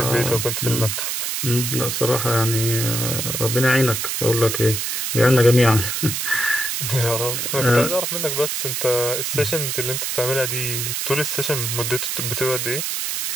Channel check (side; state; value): right; noise; hiss, 2 dB below the sound